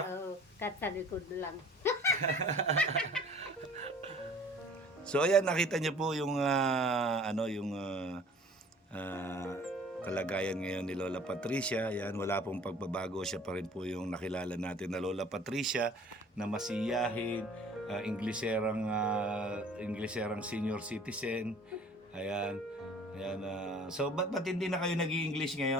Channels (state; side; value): normal; both; correlation 0.50